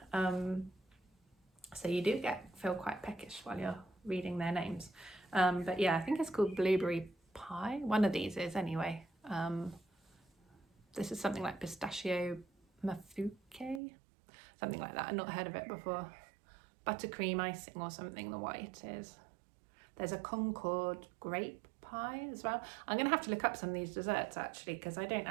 So you do feel quite peckish while you're reading their names. But yeah, I think it's called blueberry pie. One of these is anyway. This is something like pistachio mafuke, something like that. I've not heard of it before. Buttercream icing or something, the white is. There's a Concord grape pie as well. I'm gonna have to look up some of these desserts actually, because I don't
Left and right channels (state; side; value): drops out; left; at 13.8 s